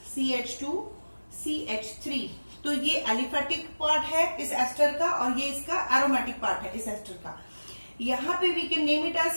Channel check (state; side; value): inverted; both; correlation -1.00